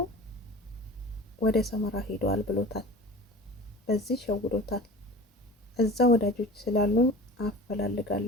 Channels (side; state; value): both; normal; correlation 0.38